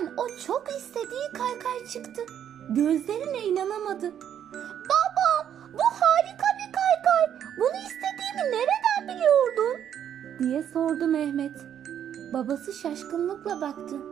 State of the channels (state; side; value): quieter; left; 9.5 dB